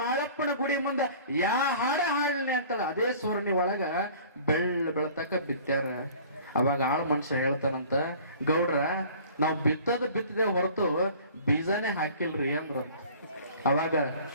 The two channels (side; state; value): both; inverted; correlation -0.48